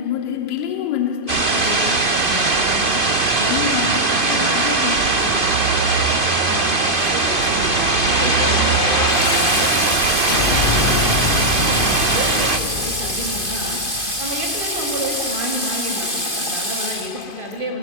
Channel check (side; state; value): right; late; 2.5 ms